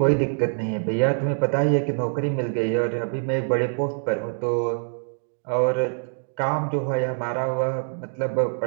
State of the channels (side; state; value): left; silent; digital silence